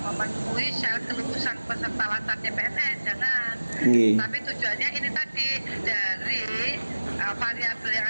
syarat kelulusan peserta latar CPNS, jangan. Nggih. Tapi tujuannya ini tadi dari variabel yang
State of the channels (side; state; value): both; inverted; correlation -1.00